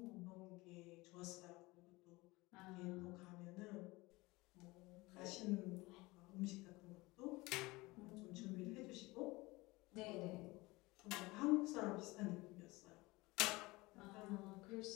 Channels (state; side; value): quieter; right; 22.0 dB